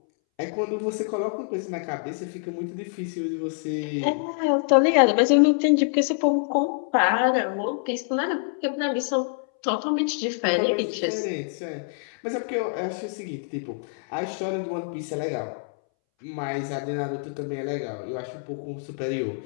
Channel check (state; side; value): silent; right; 61 dB below the other